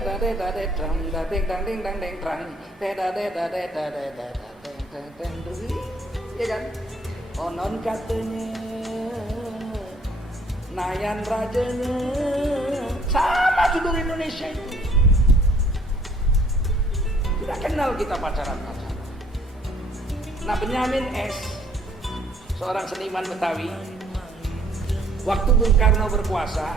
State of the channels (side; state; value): both; normal; correlation 0.62